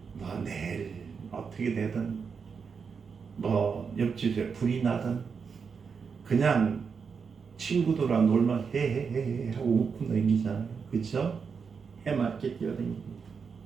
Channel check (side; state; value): left; quieter; 5.8 dB